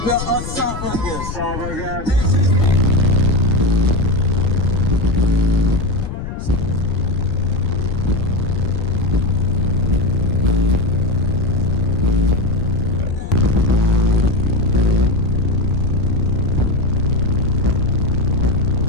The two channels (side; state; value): left; noise; rumble, 7 dB below the sound